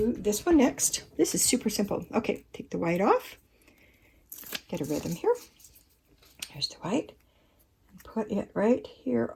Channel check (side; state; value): both; identical; correlation 1.00